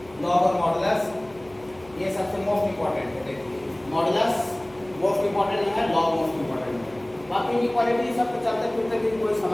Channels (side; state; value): left; noise; hum, 25 dB below the sound